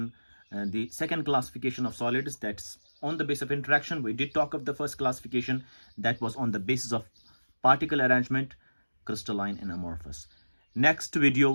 the second classification of solids. That's on the basis of interaction. We did talk of the first classification that was on the basis of particle arrangement, crystalline and amorphous. Next video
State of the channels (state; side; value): inverted; both; correlation -1.00